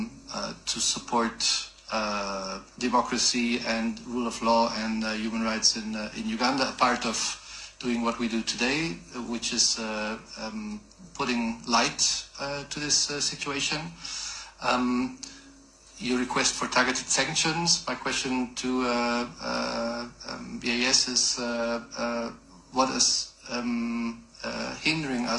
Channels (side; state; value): both; identical; correlation 1.00